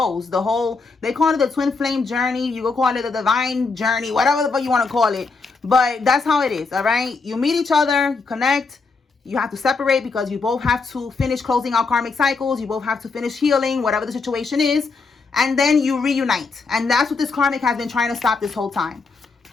They call it the twin flame journey. You could call it the divine journey, whatever the fuck you want to call it. But that's how it is, all right? You meet each other, you connect. You have to separate because you both have to finish closing out karmic cycles. You both have to finish healing, whatever the situation is. And then you reunite. And that's what this karmic has been trying to stop this whole time.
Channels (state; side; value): quieter; right; 4.3 dB